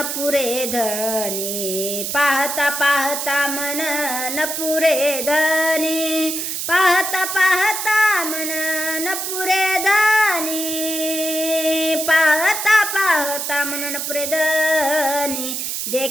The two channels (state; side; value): noise; right; hiss, 3 dB below the sound